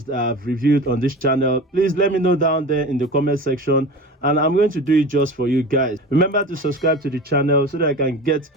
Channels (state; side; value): normal; both; correlation 0.33